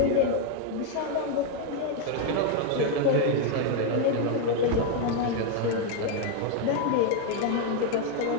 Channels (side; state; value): both; different; correlation 0.01